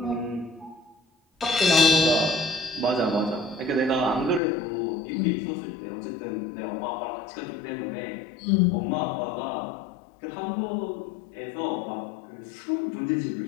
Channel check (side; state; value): right; drops out; at 4.4 s